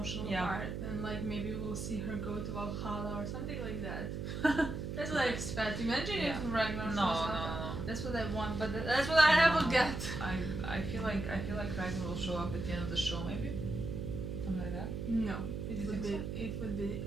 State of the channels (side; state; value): right; noise; hum, 4 dB below the sound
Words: part. And like maybe we'll see her go to Valhalla or something like that. That's what I expect. Imagine if Ragnar shows up. That's what I want, but that's what I never get. I feel like Ragnar will show up at the end of the show, maybe. Something like that. No, it would be.